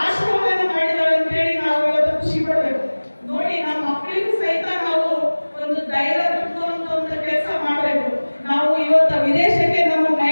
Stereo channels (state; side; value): inverted; both; correlation -1.00